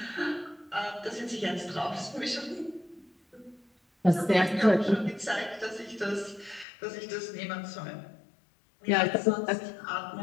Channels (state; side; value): drops out; right; at 6.7 s